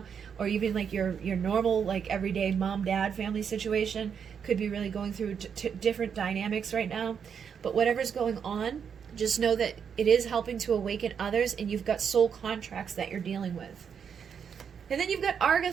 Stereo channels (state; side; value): quieter; left; 7.2 dB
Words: Or even like your normal, like everyday mom-dad family situation could be really going through different dynamics right now. But whatever's going on, just know that it is helping to awaken others, and you've got soul contracts that you're dealing with. And then you've got